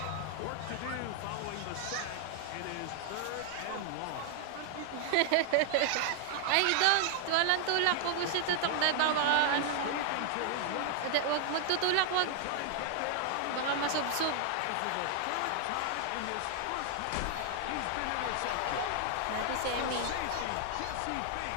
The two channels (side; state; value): both; different; correlation 0.00